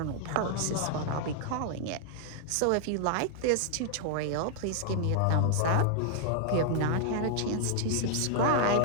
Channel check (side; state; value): both; different; correlation 0.00